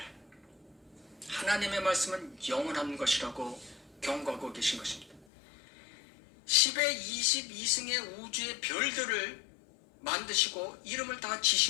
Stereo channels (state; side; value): drops out; right; at 5.2 s